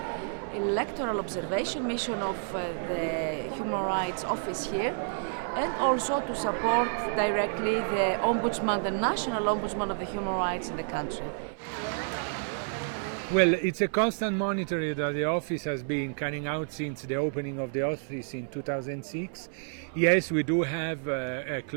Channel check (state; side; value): silent; left; 58 dB below the other